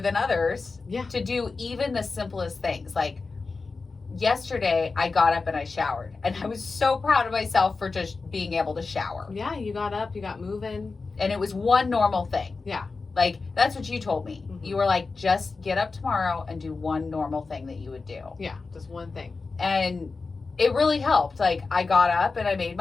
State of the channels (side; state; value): right; quieter; 4.2 dB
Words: others to do even the simplest things. Like yesterday, I got up and I showered. And I was so proud of myself for just being able to shower. Yeah, you got up, you got moving. And it was one normal thing. Yeah. Like, that's what you told me. You were like, just get up tomorrow and do one normal thing that you would do. Yeah, just one thing. And it really helped. Like, I got up and I made